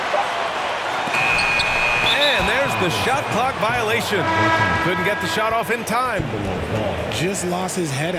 And there's the shot clock violation. Couldn't get the shot off in time. Just lost his head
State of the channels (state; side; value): identical; both; correlation 1.00